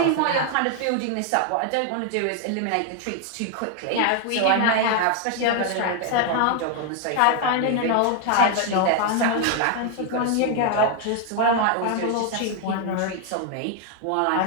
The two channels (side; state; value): both; different; correlation 0.01